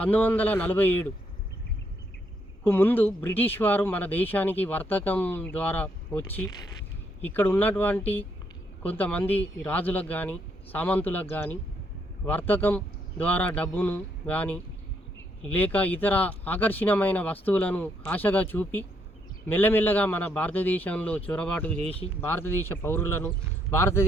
1947కు ముందు బ్రిటిష్ వారు మన దేశానికి వర్తకం ద్వారా వచ్చి ఇక్కడ ఉన్నటువంటి కొంతమంది రాజులకు కానీ సామంతులకు కానీ వర్తకం ద్వారా డబ్బును కానీ లేక ఇతర ఆకర్షణీయమైన వస్తువులను ఆశగా చూపి మెల్లమెల్లగా మన భారతదేశంలో చొరబాటు చేసి భారతదేశ పౌరులను,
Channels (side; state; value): both; normal; correlation 0.74